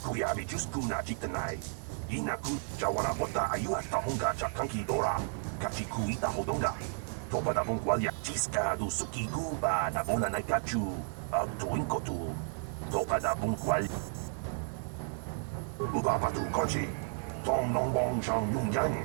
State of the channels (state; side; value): silent; left; digital silence